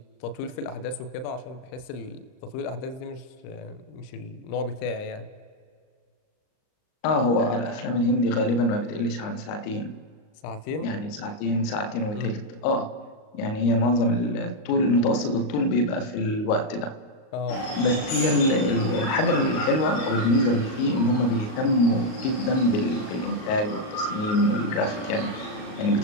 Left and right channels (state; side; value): late; right; 38 ms